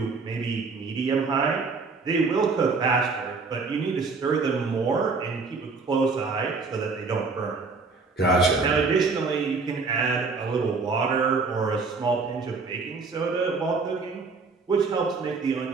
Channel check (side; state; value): left; quieter; 4.4 dB